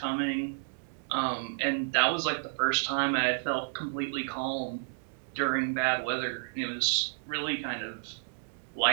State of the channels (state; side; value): silent; left; digital silence